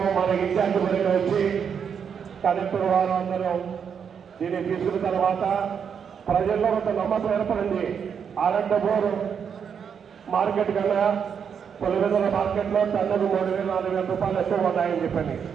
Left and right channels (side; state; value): left; quieter; 7.2 dB